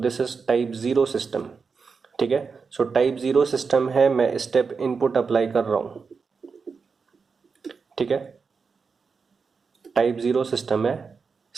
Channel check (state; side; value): quieter; left; 5.2 dB